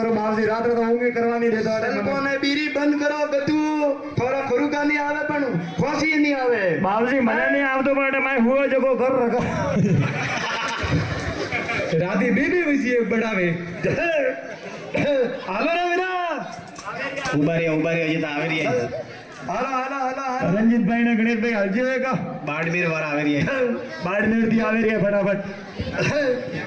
बाबूजी रात रा तो होंगे करवा नहीं देता सल्पो ने बीरी बंद करो गतू थोड़ा खरुका नहीं आवे पण खोसी नहीं आवे बाबूजी मने नहीं आवतो बट मैं हुआ जको घर रखा राती बीबी वसी एक बढ़ावे हालो रे वीरा उबारी अजी तो आवे रही है हालो हालो हालो रंजीत भाई ने गणेश भाई हल जाएगा बाड़मेर वाला आवे रही है बाड़मेर दी आवे रही है फटाफट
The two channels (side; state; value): both; identical; correlation 1.00